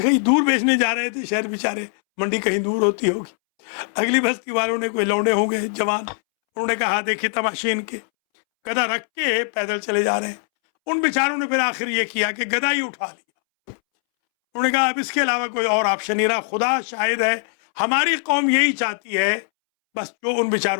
کہیں دور بیچنے جا رہے تھے شہر بیچارے، منڈی کہیں دور ہوتی ہوگی. اگلی بستی والوں نے کوئی لوڈے ہوں گے جوان، انہوں نے کہا دیکھیے تماشے ان کے، گدھا رکھ کے پیدل چلے جا رہے ہیں. ان بیچاروں نے پھر آخر یہ کیا کہ گدھا ہی اٹھا لیا. انہوں نے کہا اب اس کے علاوہ کوئی اور آپشن نہیں رہا. خدا شاہد ہے ہماری قوم یہی چاہتی ہے بس جو ان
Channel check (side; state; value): right; silent; 65 dB below the other